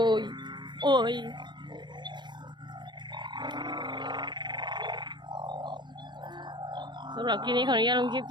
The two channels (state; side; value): late; left; 0.22 ms